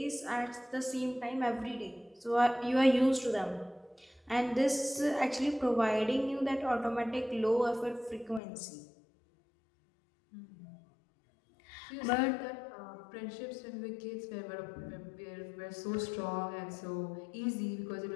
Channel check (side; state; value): right; drops out; at 8.4 s